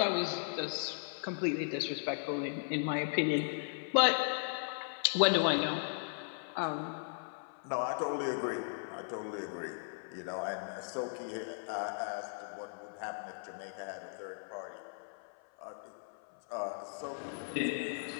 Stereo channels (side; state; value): right; silent; 53 dB below the other